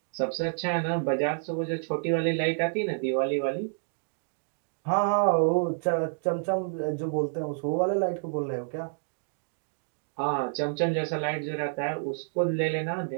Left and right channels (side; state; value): left; silent; digital silence